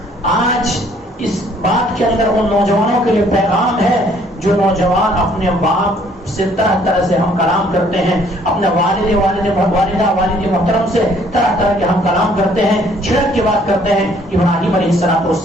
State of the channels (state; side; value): normal; both; correlation 0.61